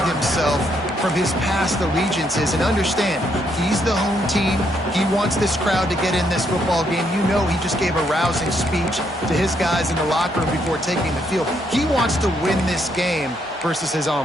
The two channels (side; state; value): both; normal; correlation 0.74